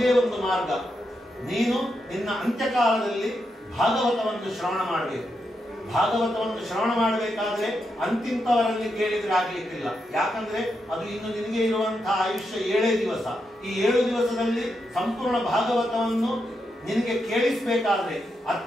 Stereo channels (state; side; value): normal; both; correlation 0.84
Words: ಒಂದು ಮಾರ್ಗ, ನೀನು ನಿನ್ನ ಅಂತ್ಯಕಾಲದಲ್ಲಿ ಭಾಗವತವನ್ನು ಶ್ರವಣ ಮಾಡಬೇಕು. ಭಾಗವತವನ್ನು ಶ್ರವಣ ಮಾಡಬೇಕಾದ್ರೆ ಅಂತಿಂತವರಲ್ಲಿ ಕೇಳಿದ್ರೆ ಆಗ್ಲಿಕ್ಕಿಲ್ಲ. ಯಾಕಂದ್ರೆ ಅದು ಇನ್ನು ನಿನಗೆ ಇರುವಂತಹ ಆಯುಷ್ಯ 7 ದಿವಸ. ಈ 7 ದಿವಸದಲ್ಲಿ ಸಂಪೂರ್ಣ ಭಾಗವತವನ್ನು ನಿನಗೆ ಕೇಳಿಸಬೇಕಾದ್ರೆ